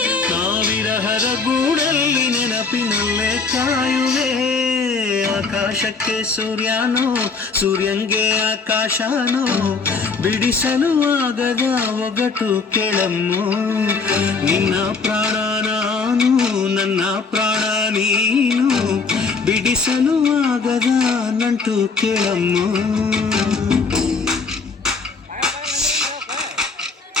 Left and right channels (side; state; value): right; quieter; 4.6 dB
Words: ಗೂಡಲ್ಲಿ ನೆನಪಿನಲ್ಲೇ ಕಾಯುವೆ ಆಕಾಶಕ್ಕೆ ಸೂರ್ಯನೋ ಸೂರ್ಯಂಗೆ ಆಕಾಶನೋ ಬಿಡಿಸಲು ಆಗದ ಒಗಟು ಕೇಳಮ್ಮೋ ನಿನ್ನ ಪ್ರಾಣ ನಾನು ನನ್ನ ಪ್ರಾಣ ನೀನು ಬಿಡಿಸಲು ಆಗದ ನಂಟು ಕೇಳಮ್ಮೋ